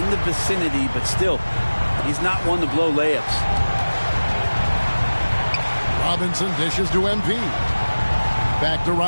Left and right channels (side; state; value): both; inverted; correlation -1.00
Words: the vicinity, but still, he's not one to blow layups. Robinson dishes to MP. Back to